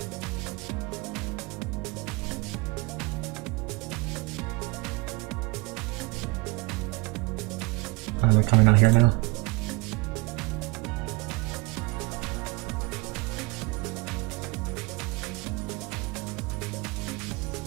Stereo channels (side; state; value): left; quieter; 24.8 dB